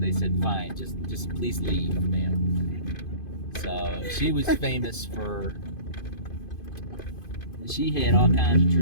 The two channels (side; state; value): right; late; 2.5 ms